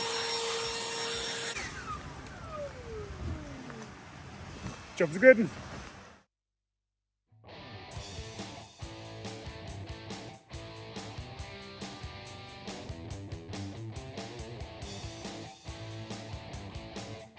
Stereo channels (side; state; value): both; identical; correlation 1.00